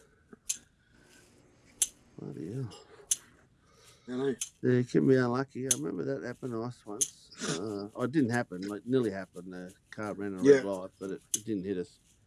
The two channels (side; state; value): both; identical; correlation 1.00